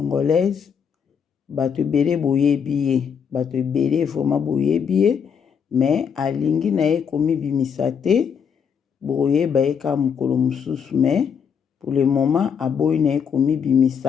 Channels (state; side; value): quieter; right; 7.1 dB